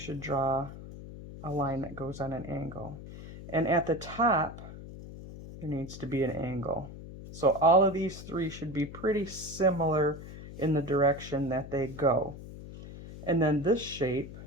draw a line that goes on an angle. And at the top, there needs to be an angle. So all of these three should be pretty similar in the direction that they go. And then this shape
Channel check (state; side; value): noise; left; hum, 13 dB below the sound